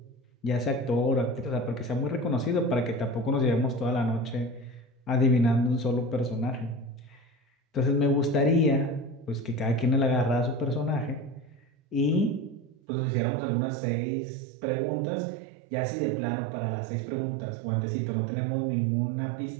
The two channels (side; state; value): left; drops out; at 12.8 s